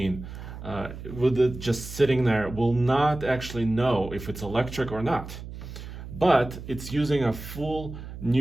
with it just sitting there will not actually know if it's electric or not. But it's using a full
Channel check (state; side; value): noise; right; hum, 11 dB below the sound